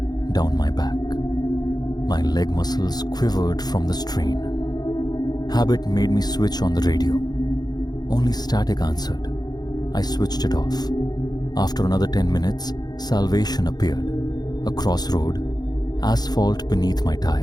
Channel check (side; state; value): right; late; 0.19 ms